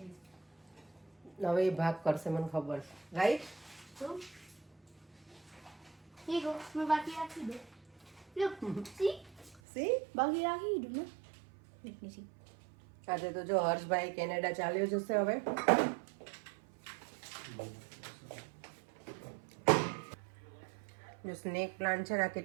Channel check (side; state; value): left; drops out; at 9.6 s